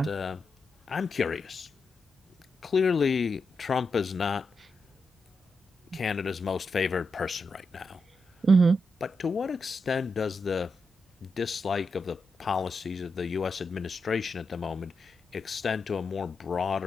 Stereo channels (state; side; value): normal; both; correlation 0.86